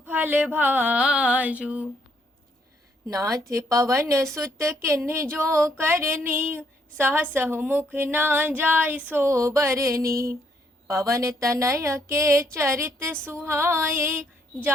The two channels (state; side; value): normal; both; correlation 0.71